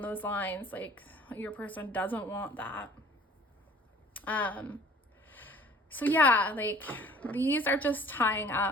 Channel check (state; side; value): normal; both; correlation 0.51